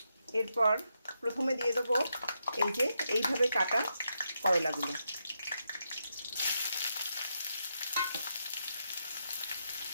এরপর প্রথমে দিয়ে দেবো এই যে এইভাবে কাটা করলাগুলো।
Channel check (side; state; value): both; inverted; correlation -0.83